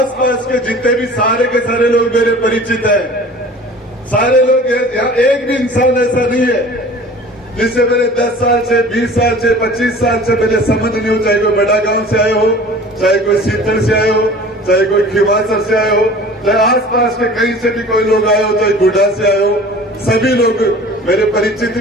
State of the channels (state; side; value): normal; both; correlation 0.43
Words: के जितने भी सारे के सारे लोग मेरे परिचित हैं, सारे लोग यहाँ, एक भी इंसान ऐसा नहीं है जिससे मेरे 10 साल से, 20 साल से, 25 साल से पहले संबंध नहीं हो, चाहे कोई बड़ा गांव से आए हो, चाहे कोई सीतर से आए हो, चाहे कोई खिवासर से आए हो, चाहे आसपास के कहीं से भी कोई लोग आए हो, चाहे गुड्डा से आए हो, सभी लोग मेरे परिचित